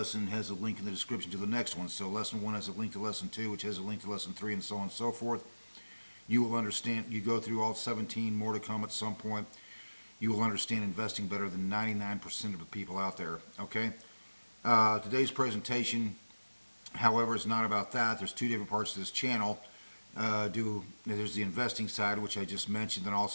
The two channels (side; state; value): both; inverted; correlation -1.00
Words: has a link in the description to the next one. So lesson 1 has a link to lesson 2, which has a link to lesson 3, and so on and so forth. You will understand, you go through all 17, more to come at some point. You will understand investing better than 99% of the people out there, okay? Today's presentation, however, is not about that. There's two different parts to this channel. There's the investing side, which I just mentioned, and